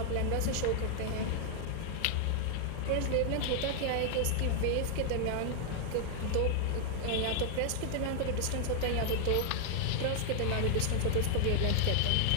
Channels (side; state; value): both; different; correlation -0.01